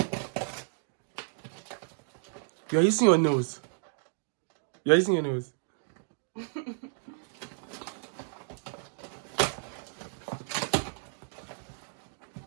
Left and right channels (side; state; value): left; silent; digital silence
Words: You're using your nose. You're using your nose.